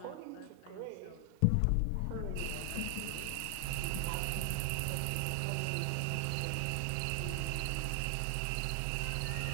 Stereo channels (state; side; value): different; both; correlation 0.00